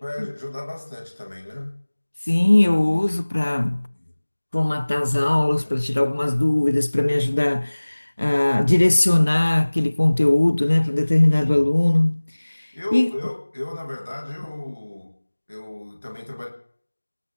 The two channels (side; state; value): both; inverted; correlation -1.00